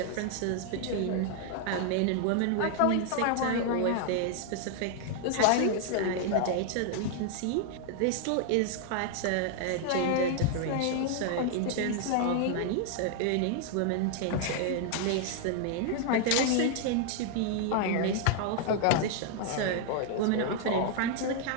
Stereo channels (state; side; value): different; both; correlation 0.00